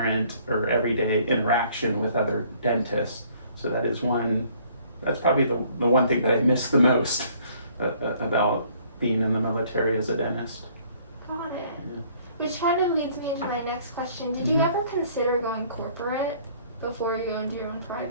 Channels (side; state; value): both; inverted; correlation -0.59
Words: or everyday interaction with other dentists. So that's probably the one thing that I miss the most about being in the military as a dentist. Got it. Yeah. Which kind of leads me into my next question. Did you ever consider going corporate before you go into your own